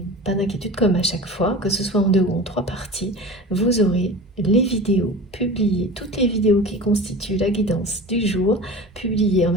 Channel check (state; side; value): normal; both; correlation 0.35